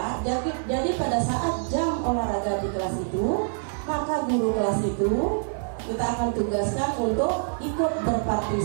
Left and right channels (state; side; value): silent; left; digital silence